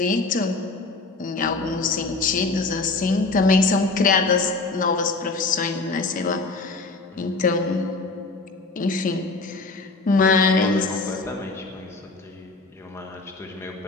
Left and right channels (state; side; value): quieter; right; 3.6 dB